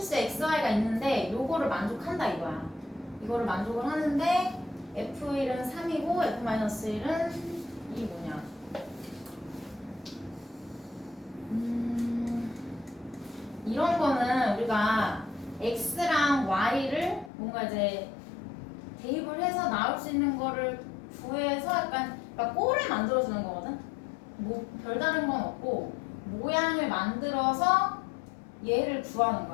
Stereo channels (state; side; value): drops out; right; at 17.3 s